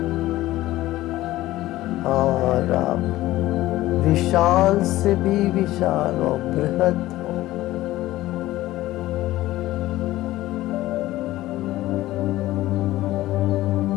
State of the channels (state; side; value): quieter; right; 16.3 dB